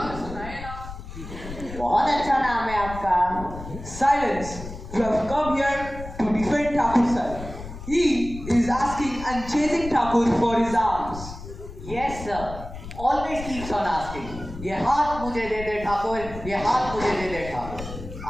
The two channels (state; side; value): noise; left; rumble, 11 dB below the sound